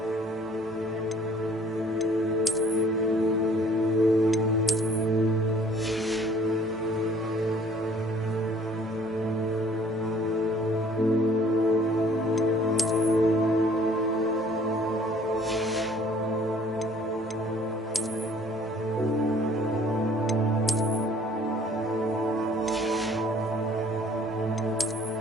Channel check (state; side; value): normal; both; correlation 0.56